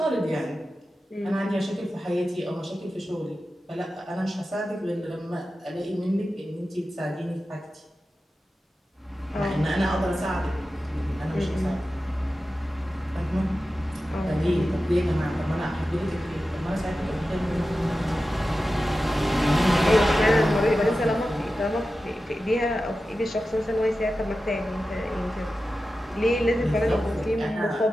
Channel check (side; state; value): both; normal; correlation 0.93